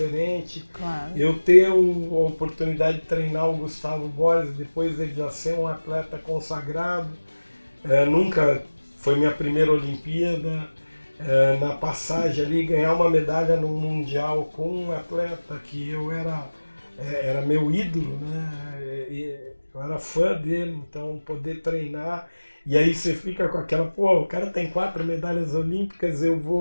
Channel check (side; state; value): both; inverted; correlation -1.00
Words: Claro. Eu ter a oportunidade de treinar o Gustavo Borges, depois dele já ser um atleta consagrado, nunca foi minha primeira Olimpíada, na passagem ali, ganhar uma medalha no Mundial com um atleta que eu era meu ídolo, né? Eu era fã dele, então poder treinar, e aí você fica com aquela, o cara tem 4 medalhas olímpicas, eu